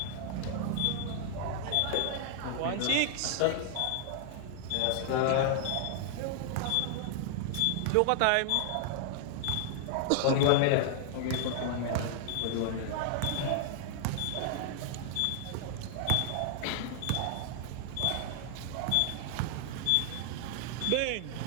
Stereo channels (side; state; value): both; different; correlation 0.00